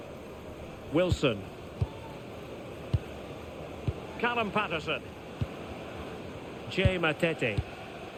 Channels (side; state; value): both; identical; correlation 1.00